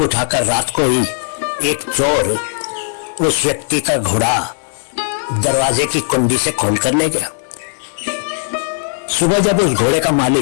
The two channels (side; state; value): right; silent; 67 dB below the other